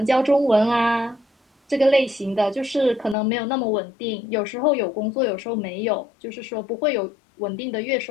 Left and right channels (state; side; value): drops out; right; at 3.2 s